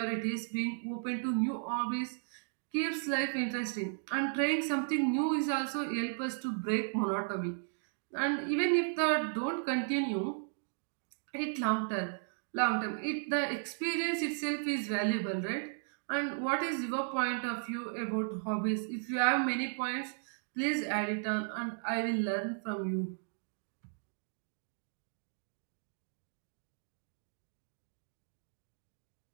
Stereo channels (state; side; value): silent; left; digital silence